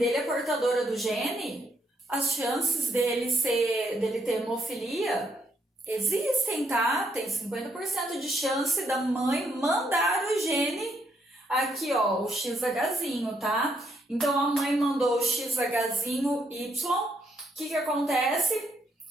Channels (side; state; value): both; normal; correlation 0.74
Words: é portadora do gene, as chances dele ter hemofilia existem, tá? Tem 50% de chance da mãe mandar o gene aqui, ó, o XHzinho, tá? Então, a mãe mandou o XHzinho Y. O que acontece?